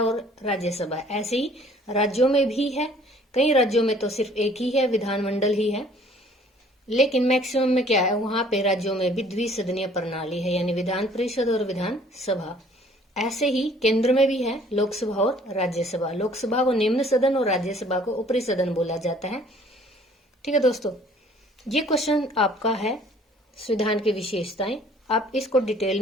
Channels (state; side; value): normal; both; correlation 0.56